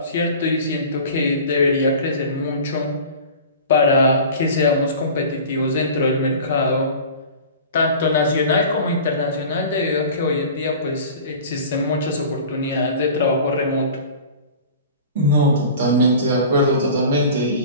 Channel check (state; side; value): inverted; both; correlation -0.40